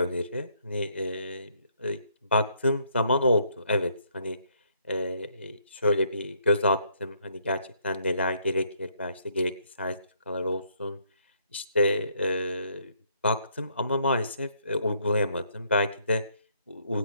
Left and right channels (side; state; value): both; inverted; correlation -0.70